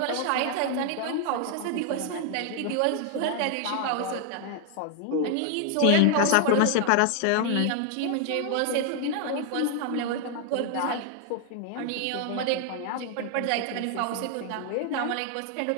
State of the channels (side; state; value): both; different; correlation 0.00